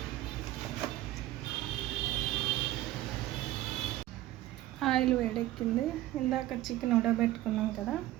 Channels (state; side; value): quieter; left; 15.3 dB